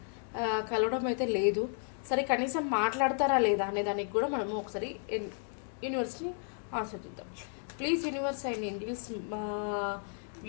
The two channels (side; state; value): right; silent; 56 dB below the other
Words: కలవడం అయితే లేదు. సరే, కనీసం మాట్లాడతారా లేదా అనే దానికి కూడా మనము ఒకసారి యూనివర్స్ని ఆశ్రదిద్దాం. ప్లీజ్ యూనివర్స్ అండ్ ఏంజిల్స్ మా